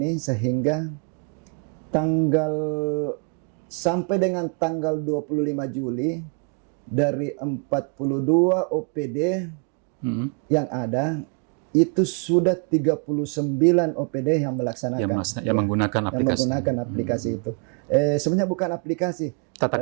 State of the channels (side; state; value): left; quieter; 39.4 dB